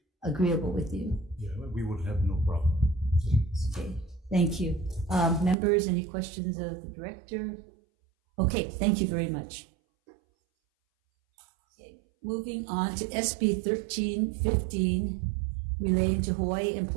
agreeable with you. Yeah, we would have no problem. Okay, thank you. Members, any questions of the director? Okay, thank you very much. Okay, moving on to SB 1315, relating to Hawaii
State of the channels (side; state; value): left; drops out; at 5.6 s